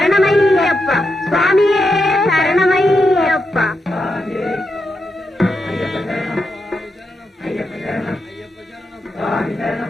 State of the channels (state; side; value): normal; both; correlation 0.85